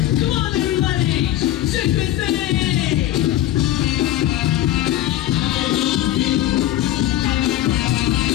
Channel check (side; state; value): right; quieter; 13.5 dB